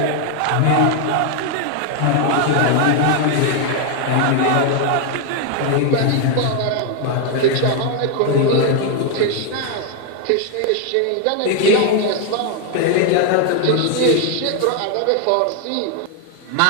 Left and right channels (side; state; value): both; different; correlation 0.00